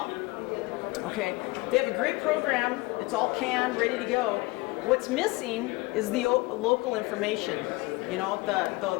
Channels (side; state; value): right; quieter; 23.1 dB